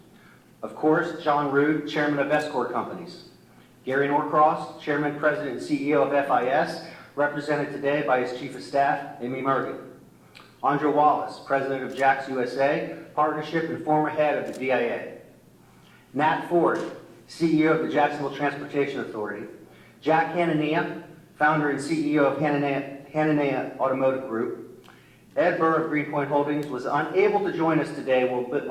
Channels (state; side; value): identical; both; correlation 1.00